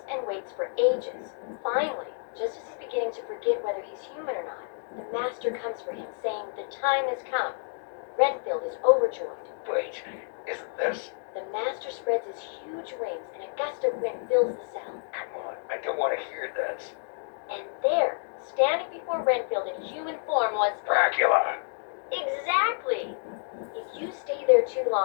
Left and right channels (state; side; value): silent; right; digital silence